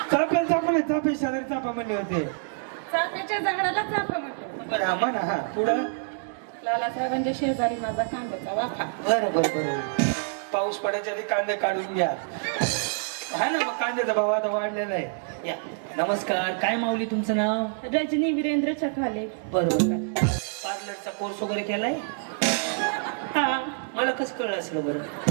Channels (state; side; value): silent; left; digital silence